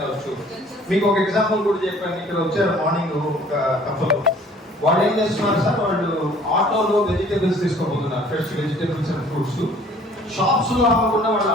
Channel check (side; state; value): both; normal; correlation 0.54